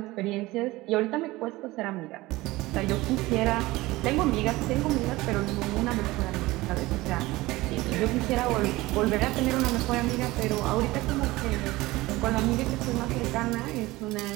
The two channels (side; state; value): left; quieter; 19.5 dB